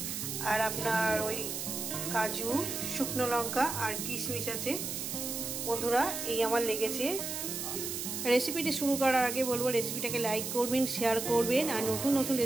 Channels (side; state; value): right; noise; hiss, 4 dB below the sound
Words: আর আপনার ওই কাজু, শুকনো লঙ্কা আর কিশমিশ আছে। বন্ধুরা, এই আমার লেগেছে। রেসিপিটি শুরু করার আগে বলবো, রেসিপিটাকে লাইক করবেন, শেয়ার করবেন, আর নতুন নতুন